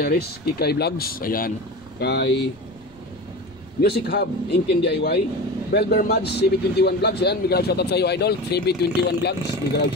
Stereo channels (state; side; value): noise; right; rumble, 25 dB below the sound